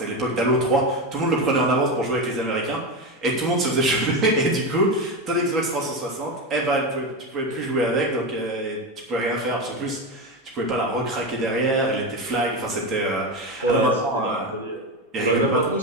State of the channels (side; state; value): both; normal; correlation 0.16